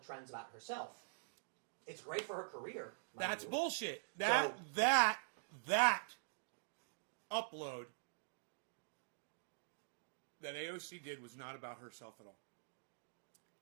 trends about herself, it's great for her career. That's bullshit. That upload that AOC did was not about herself at all.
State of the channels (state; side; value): silent; left; digital silence